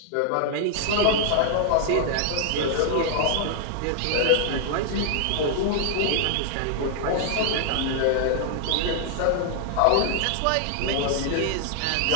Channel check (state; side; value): different; both; correlation 0.00